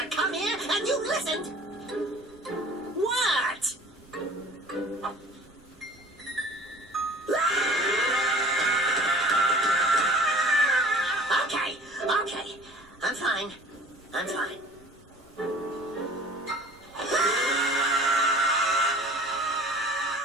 come here, and you listened! What? Okay. I'm fine.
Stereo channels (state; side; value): normal; both; correlation 0.46